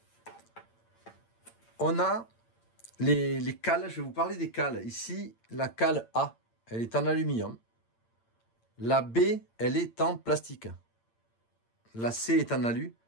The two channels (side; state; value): right; late; 8.8 ms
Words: On a les cales, je vais vous parler des cales. Ici, la cale A, elle est en aluminium. La B, elle est en plastique. La C est en alu.